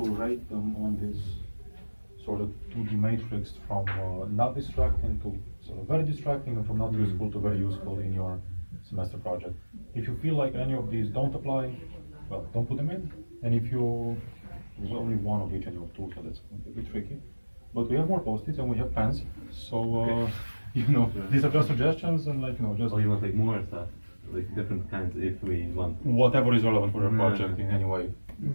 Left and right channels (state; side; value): inverted; both; correlation -1.00